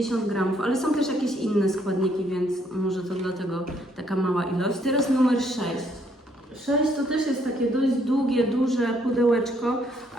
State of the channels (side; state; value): both; normal; correlation 0.69